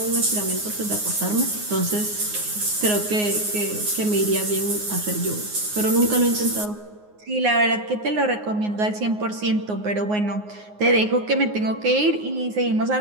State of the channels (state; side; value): late; left; 9.6 ms